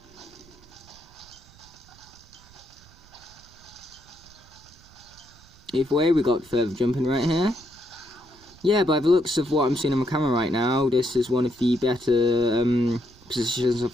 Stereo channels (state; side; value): noise; right; rumble, 25 dB below the sound